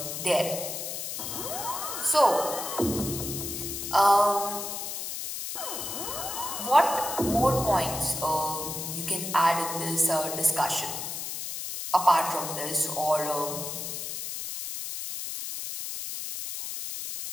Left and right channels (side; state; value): left; noise; hiss, 5 dB below the sound